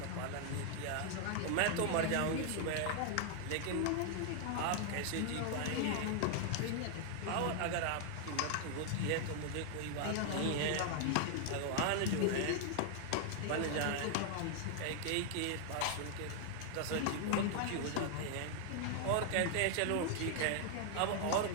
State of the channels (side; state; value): both; different; correlation 0.00